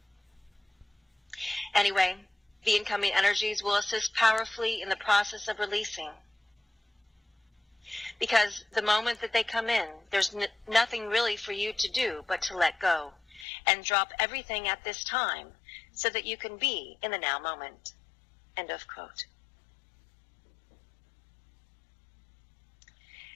Anyway, the incoming energies will assist powerfully in the process of releasing. Because the moment that they come in, there's nothing really for you to do but to let go and drop everything at this time so that you can be in the now moment. End of quote.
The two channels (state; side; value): drops out; right; at 13.5 s